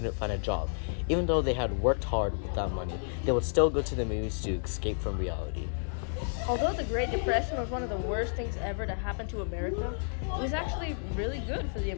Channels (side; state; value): right; silent; digital silence